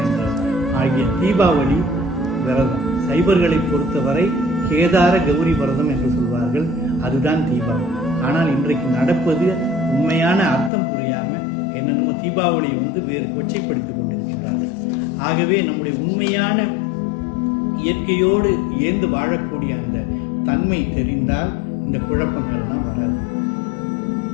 என்ற ஆகிய தீபாவளி விரதம். சைவர்களை பொறுத்தவரை கேதார கௌரி விரதம் என்று சொல்வார்கள், அதுதான் தீபாவளி. ஆனால் இன்றைக்கு நடப்பது உண்மையான அர்த்தம் புரியாம என்னென்னமோ தீபாவளியை வேறு கொச்சைப்படுத்திக் கொண்டிருக்கிறார்கள். ஆகவே நம்முடைய உண்மையான இயற்கையோடு ஏந்து வாழக்கூடிய அந்த தன்மை தெரிந்தால் இந்த குழப்பங்கள்லாம் வராது.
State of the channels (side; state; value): right; drops out; at 10.7 s